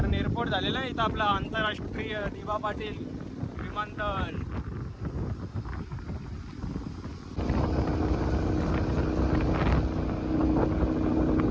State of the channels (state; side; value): identical; both; correlation 1.00